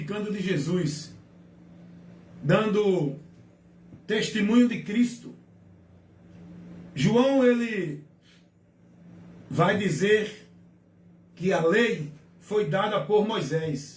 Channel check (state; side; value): identical; both; correlation 1.00